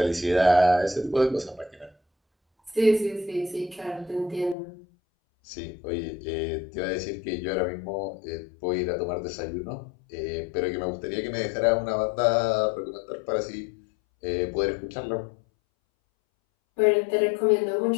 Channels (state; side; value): drops out; right; at 4.5 s